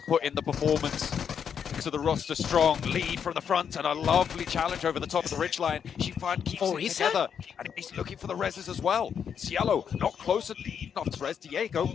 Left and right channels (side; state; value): right; quieter; 7.6 dB